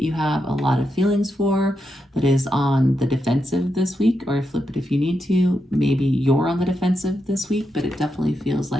you have a lot of feelings for that is on the defensive this week, or flip it if you need to. Maybe you're on the defensive this week, but it definitely feels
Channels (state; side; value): normal; both; correlation 0.85